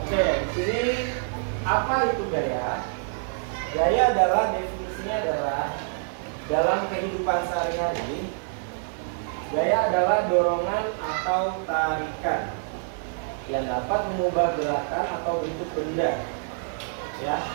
Oke, di sini apa itu gaya? Gaya adalah definisinya adalah dalam kehidupan sehari-hari, gaya adalah dorongan atau tarikan yang dapat mengubah gerakan atau bentuk benda. Ya.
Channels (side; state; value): left; silent; 61 dB below the other